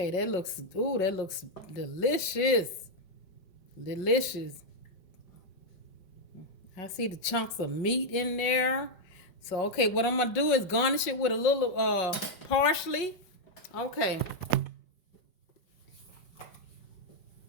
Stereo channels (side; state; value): right; late; 5.5 ms